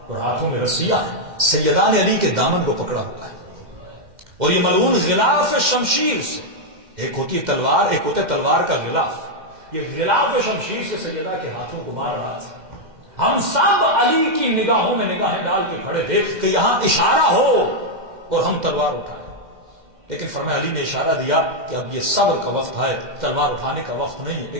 اور ہاتھوں میں رسیاں ہیں، سیدان علی کے دامن کو پکڑا ہوا ہے اور یہ ملعون غلاف شمشیر سے، ایک ہوتی ہے تلوار، ایک ہوتا ہے تلوار کا غلاف، یہ غلاف شمشیر سے سیدہ کے ہاتھوں کو مار رہا تھا. ہم سب علی کی نگاہوں میں نگاہیں ڈال کے کھڑے تھے کہ یہاں اشارہ ہو اور ہم تلوار اٹھائیں. لیکن فرمایا علی نے اشارہ دیا کہ اب یہ صبر کا وقت ہے، تلوار اٹھانے کا وقت نہیں ہے.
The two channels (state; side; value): late; left; 2.1 ms